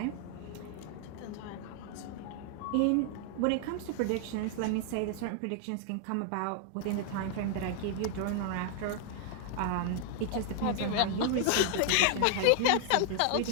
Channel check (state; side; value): different; both; correlation 0.00